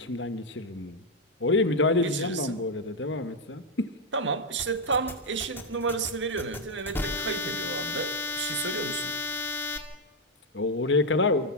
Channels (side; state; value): both; normal; correlation 0.02